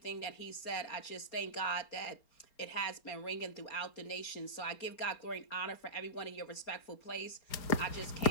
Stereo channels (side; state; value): right; late; 4.4 ms